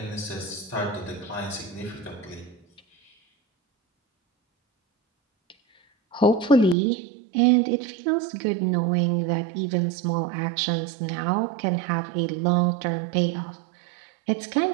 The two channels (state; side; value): drops out; left; at 6.8 s